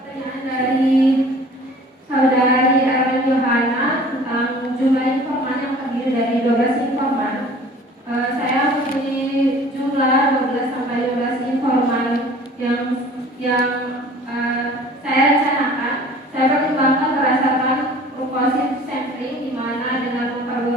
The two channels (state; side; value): normal; both; correlation 0.48